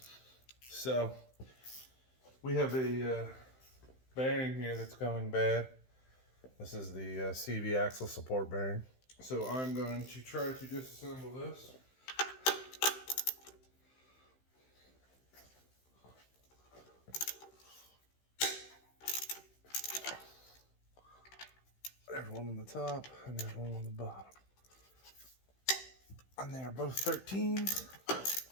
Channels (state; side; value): late; right; 15 ms